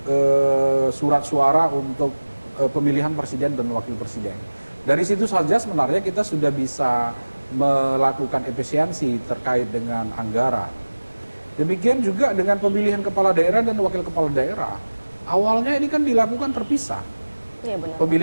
surat suara untuk pemilihan presiden dan wakil presiden. Dari situ saja sebenarnya kita sudah bisa melakukan efisiensi terkait dengan anggaran. Demikian juga dengan pemilihan kepala daerah dan wakil kepala daerah. Awalnya ini kan dilakukan terpisah. Iya, benar.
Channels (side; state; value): both; inverted; correlation -1.00